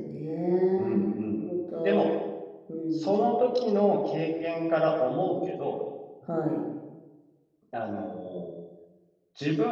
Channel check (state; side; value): identical; both; correlation 1.00